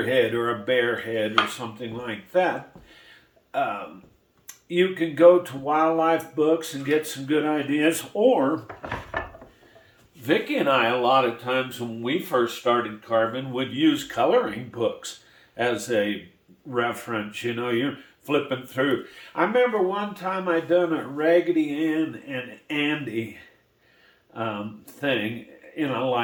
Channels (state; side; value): identical; both; correlation 1.00